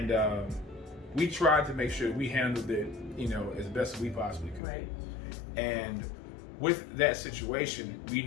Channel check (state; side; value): drops out; right; at 4.6 s